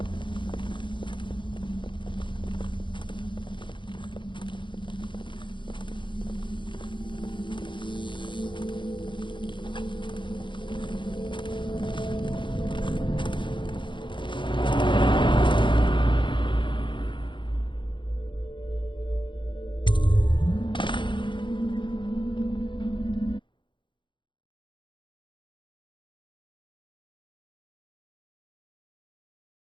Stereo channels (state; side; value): late; right; 0.23 ms